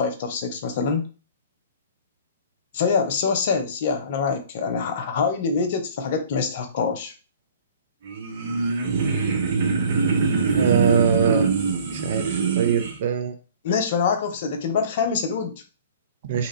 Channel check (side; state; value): both; inverted; correlation -0.48